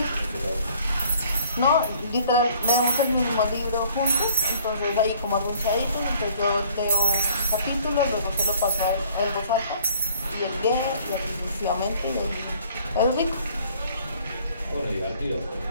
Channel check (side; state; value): both; inverted; correlation -0.56